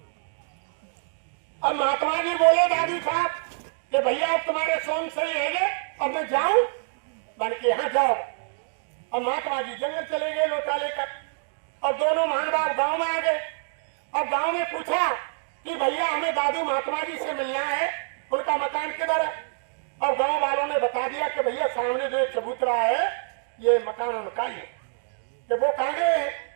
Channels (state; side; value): silent; left; digital silence